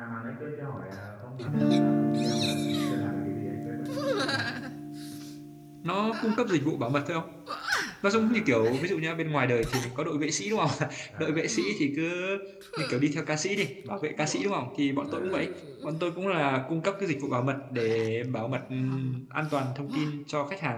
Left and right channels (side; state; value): both; identical; correlation 1.00